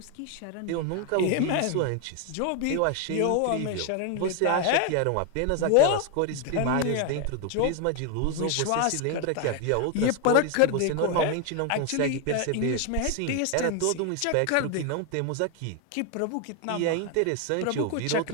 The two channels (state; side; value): different; both; correlation 0.01